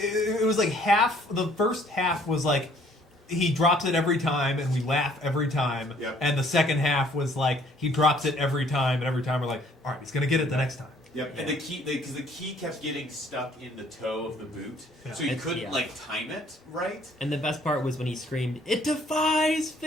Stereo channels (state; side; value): normal; both; correlation 0.60